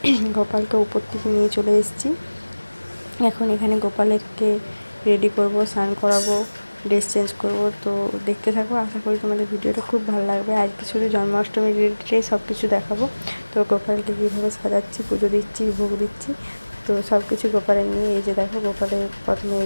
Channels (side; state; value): both; inverted; correlation -1.00